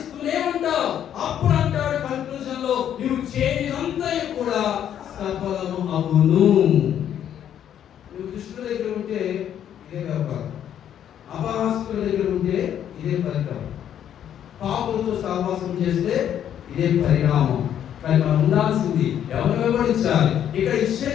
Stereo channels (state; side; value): quieter; right; 10.0 dB